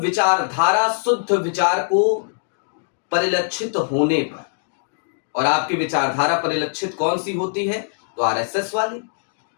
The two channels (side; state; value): right; silent; digital silence